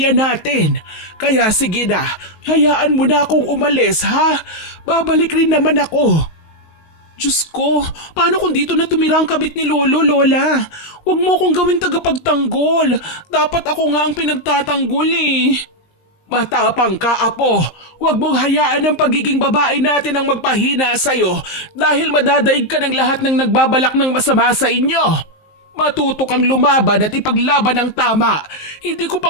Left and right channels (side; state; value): right; late; 19 ms